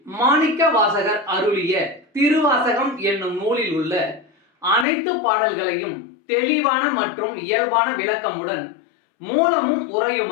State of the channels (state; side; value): drops out; right; at 4.9 s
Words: மாணிக்க வாசகர் அருளிய திருவாசகம் என்னும் நூலில் உள்ள அனைத்து பாடல்களையும் தெளிவான மற்றும் இயல்பான விளக்கமுடன் மூலமும்